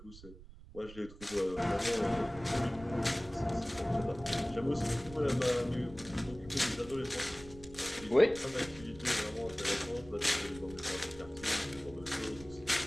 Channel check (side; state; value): right; noise; rumble, 18 dB below the sound